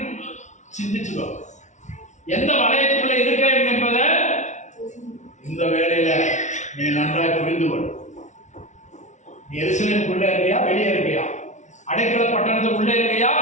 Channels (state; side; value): late; right; 0.35 ms